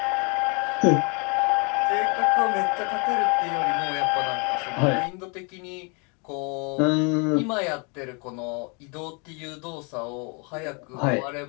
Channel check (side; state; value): right; quieter; 33.7 dB